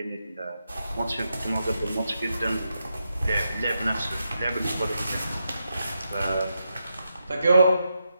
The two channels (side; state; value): both; inverted; correlation -0.85